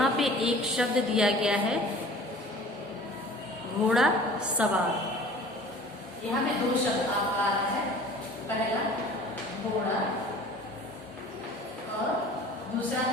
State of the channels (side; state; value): both; normal; correlation 0.45